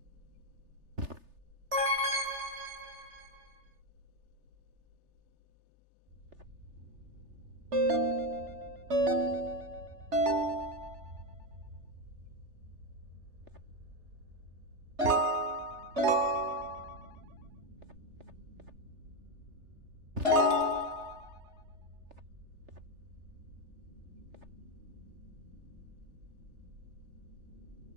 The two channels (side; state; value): left; late; 3.3 ms